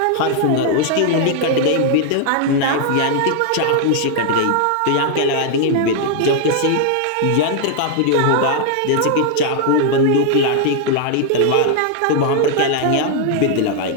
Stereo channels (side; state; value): both; different; correlation 0.00